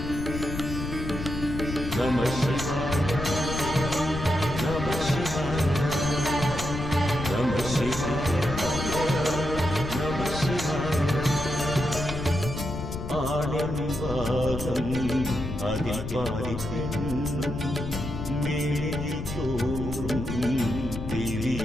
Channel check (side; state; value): left; noise; rumble, 6 dB below the sound